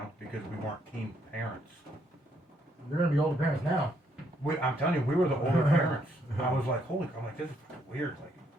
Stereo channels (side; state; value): both; normal; correlation 0.72